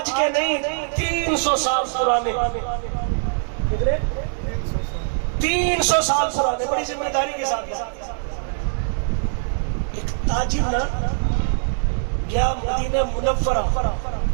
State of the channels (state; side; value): silent; left; digital silence